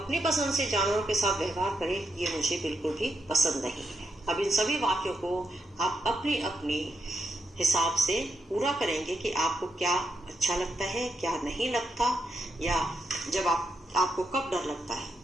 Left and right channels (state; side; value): normal; both; correlation 0.82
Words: पसंद से जानवरों के साथ व्यवहार करे, ये मुझे बिल्कुल भी पसंद नहीं है। अब इन सभी वाक्यों को आप अपनी अपनी हिसाब से पूरा करेंगे कि आपको क्या अच्छा लगता है, क्या नहीं लगता, या जब आपको कब डर लगता है।